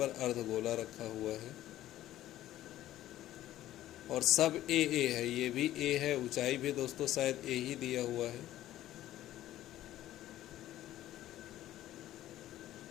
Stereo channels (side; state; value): right; quieter; 13.8 dB